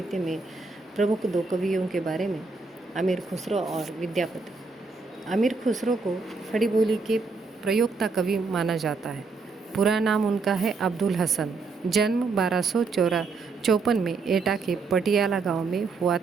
में प्रमुख दो कवियों के बारे में, अमीर खुसरो और विद्यापति। अमीर खुसरो को खड़ी बोली के प्रयोक्ता कवि माना जाता है। पूरा नाम उनका है अब्दुल हसन। जन्म 1254 में एटा के पटियाला गांव में हुआ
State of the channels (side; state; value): left; quieter; 4.2 dB